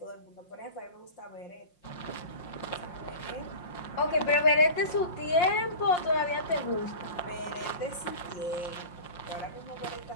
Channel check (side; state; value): right; late; 5.6 ms